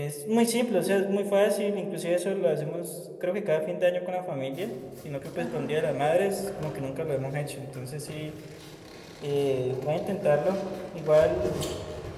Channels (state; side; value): identical; both; correlation 1.00